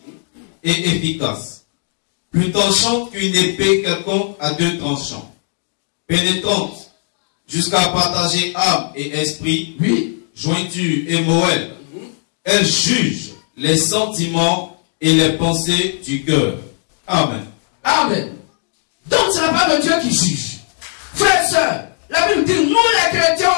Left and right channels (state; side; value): silent; right; digital silence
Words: et efficace, plus tranchante qu'une épée quelconque à 2 tranchants, pénétrante jusqu'à partager âme et esprit, oui, jointure et moelle. Elle juge les sentiments et les pensées du cœur. Amen. Amen. Donc c'est la parole de Dieu qui juge. Frères et sœurs, la Bible dit, nous les chrétiens